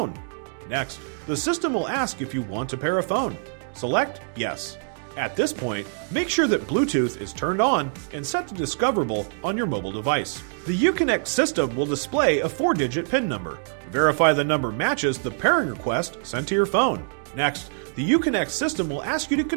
Next, the system will ask if you want to pair a phone. Select Yes. At this point, make sure that Bluetooth is turned on and set to Discoverable on your mobile device. The Uconnect system will display a 4-digit PIN number. Verify the number matches the pairing request sent to your phone. Next, the Uconnect system will ask you to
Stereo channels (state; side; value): silent; left; digital silence